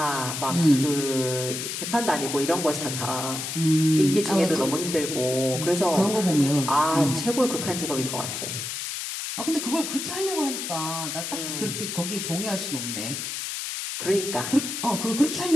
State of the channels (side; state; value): left; noise; hiss, 5 dB below the sound